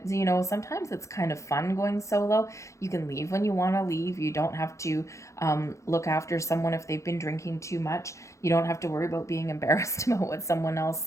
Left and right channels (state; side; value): late; right; 0.15 ms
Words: sometimes it's kind of fun going solo. You can leave when you want to leave. You don't have to look after someone if they've been drinking too much. You don't have to worry about being embarrassed about what someone else